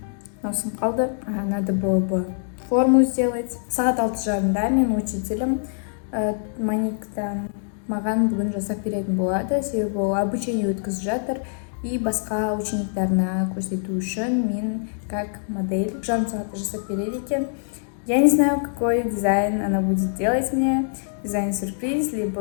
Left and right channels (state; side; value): silent; right; 63 dB below the other